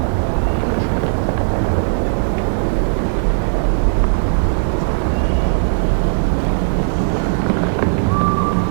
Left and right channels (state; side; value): silent; left; 61 dB below the other